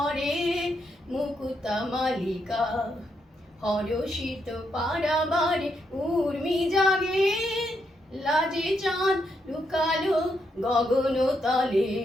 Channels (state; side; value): normal; both; correlation 0.79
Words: মুকুতা মালিকা। হরষিত পারাবারে উর্মি জাগে, লাজে চাঁদ লুকালো গগন তলে।